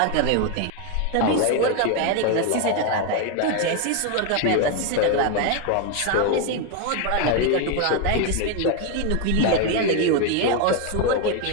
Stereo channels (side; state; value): both; different; correlation 0.01